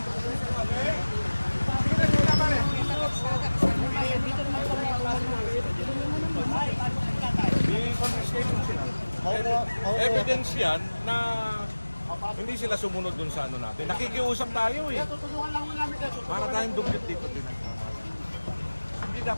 Sige na muna pare. I-confiscation sila. Evidence yan na hindi sila sumunod dun sa ano natin. Nakikiusap tayo eh. Tutulungan lang namin kayo. Para tayong duplicate dito din. Hindi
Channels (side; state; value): both; inverted; correlation -1.00